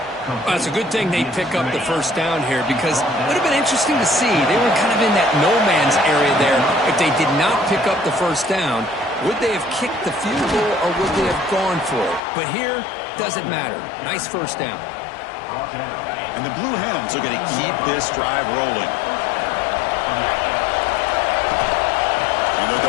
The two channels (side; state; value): right; drops out; at 12.2 s